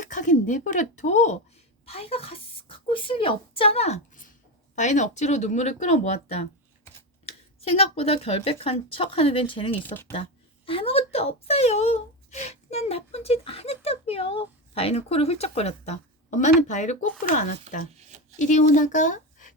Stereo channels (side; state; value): both; normal; correlation 0.16